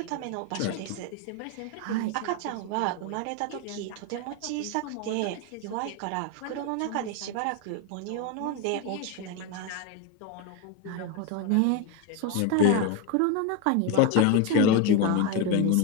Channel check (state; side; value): different; both; correlation 0.02